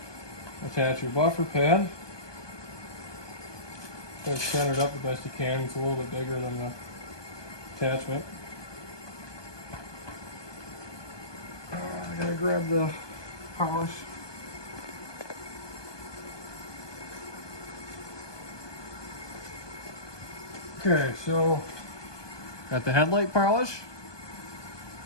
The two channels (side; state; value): right; late; 1.2 ms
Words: attach your buffer pad. Try to center it up the best you can. It's a little bit bigger than the attachment. I gotta grab the polish. Okay, so got the headlight polish.